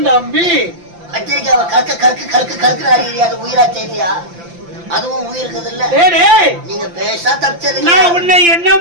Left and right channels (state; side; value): late; left; 5.8 ms